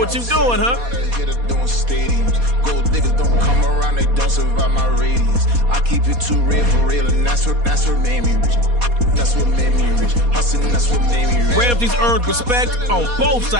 you're doing, huh? Here to doing stadiums. Gold diggers don't come around, they don't survive my radius. I keep it too real for real, and that's what made me rich. That's what made me rich. Hustling, that's what made me rich. Ramsey's earned respect on both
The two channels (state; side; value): late; left; 4.2 ms